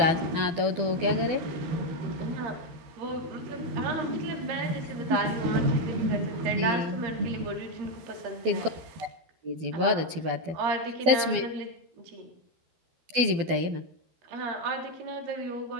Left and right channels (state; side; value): late; left; 12 ms